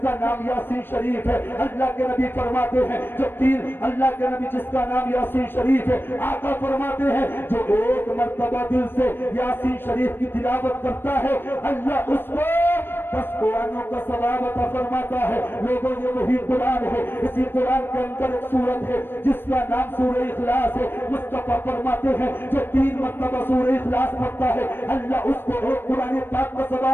کا نام یاسین شریف ہے. اللہ کے نبی فرماتے ہیں جو اللہ کے نبی جس کا نام یاسین شریف ہے, آقا فرماتے ہیں جو ایک مرتبہ دل سے یاسین شریف کی تلاوت کرتا ہے اللہ اس کو 10 قرآنوں کا ثواب عطا فرماتا ہے. لوگوں یہ وہی قرآن ہے. اسی قرآن کے اندر ایک سورت ہے جس کا نام سورہ اخلاص ہے. مصطفیٰ فرماتے ہیں جو 3 مرتبہ سورہ اخلاص پڑھتا ہے اللہ اس کو ایک قرآن پاک کا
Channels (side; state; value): right; late; 0.099 ms